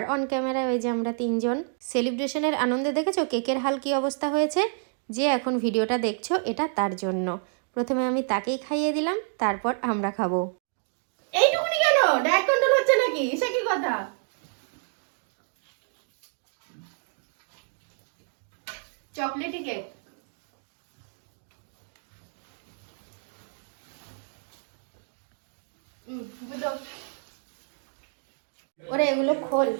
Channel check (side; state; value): left; silent; 56 dB below the other